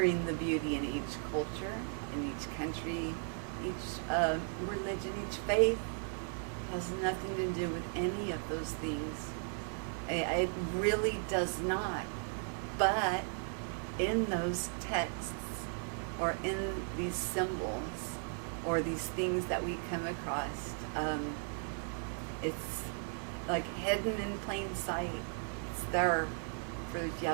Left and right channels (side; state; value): left; silent; 53 dB below the other